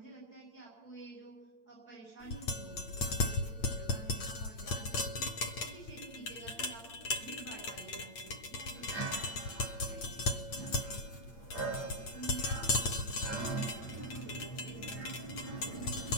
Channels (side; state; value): right; late; 8.8 ms